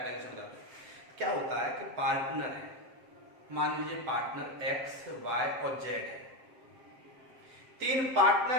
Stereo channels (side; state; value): left; late; 7.5 ms